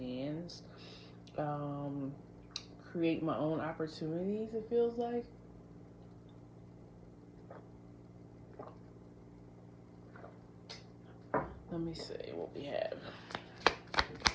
create my own opportunities, it feels like. Let me see what we have.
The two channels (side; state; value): both; identical; correlation 1.00